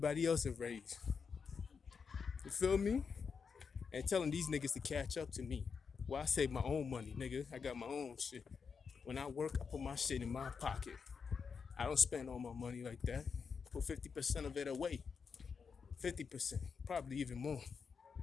else a raise. You feel me? And telling these niggas to catch up to me. Well, I save my own money, nigga. I got my own shit. When I work, I put my shit in my pocket. I don't spend all my money like that. Put 50% of it away. 50%, probably even more.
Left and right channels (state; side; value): quieter; right; 5.8 dB